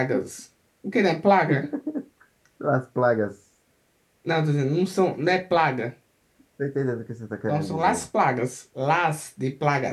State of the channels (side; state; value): both; identical; correlation 1.00